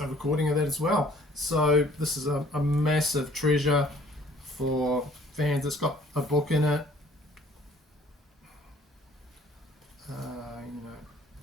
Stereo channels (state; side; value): normal; both; correlation 0.56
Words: recording of that as well. So this is a massive treasure for fans. It's got a book in it,